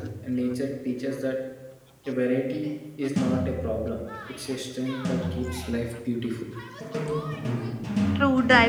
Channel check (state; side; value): identical; both; correlation 1.00